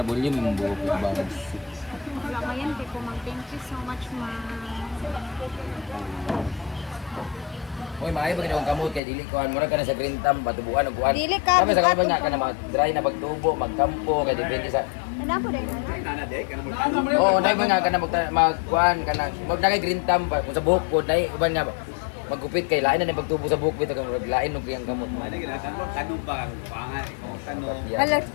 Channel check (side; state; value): right; drops out; at 9.0 s